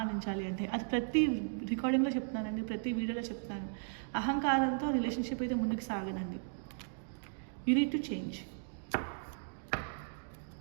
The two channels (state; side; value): silent; left; digital silence